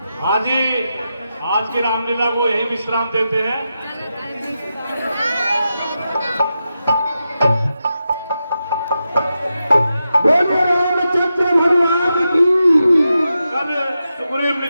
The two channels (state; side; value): inverted; both; correlation -0.89